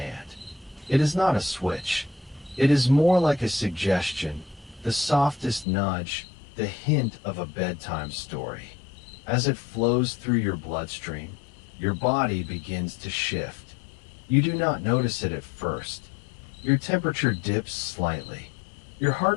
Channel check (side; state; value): right; drops out; at 5.7 s